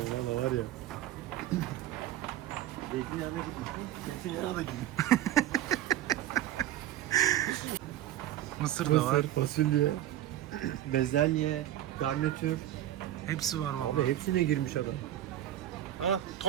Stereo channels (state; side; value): quieter; left; 12.8 dB